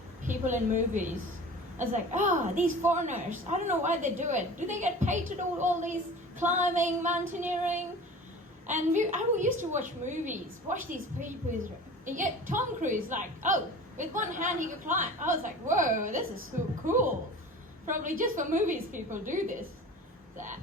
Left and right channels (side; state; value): both; normal; correlation 0.39